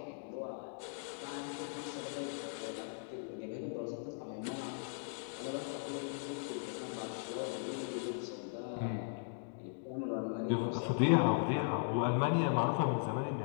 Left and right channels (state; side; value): silent; right; digital silence